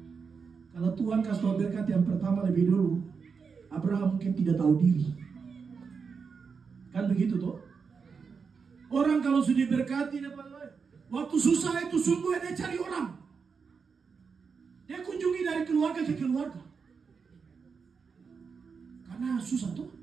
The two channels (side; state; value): left; quieter; 5.6 dB